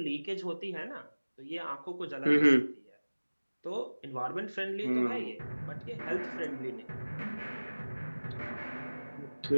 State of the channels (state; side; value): inverted; both; correlation -1.00